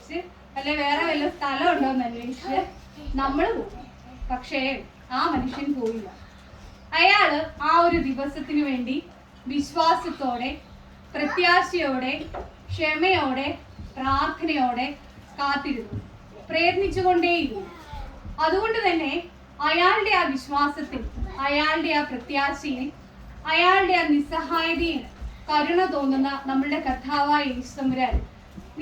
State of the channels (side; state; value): both; identical; correlation 1.00